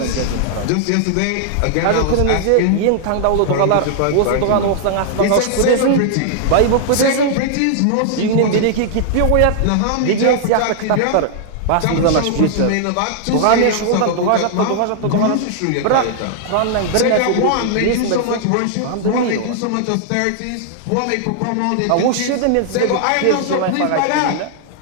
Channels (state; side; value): different; both; correlation -0.01